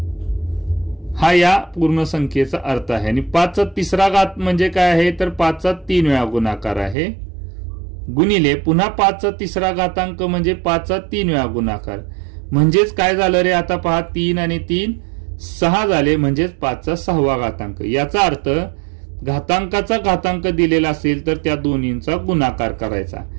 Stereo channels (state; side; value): drops out; left; at 7.0 s